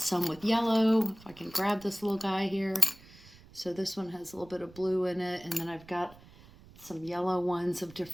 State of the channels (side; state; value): right; noise; rumble, 22 dB below the sound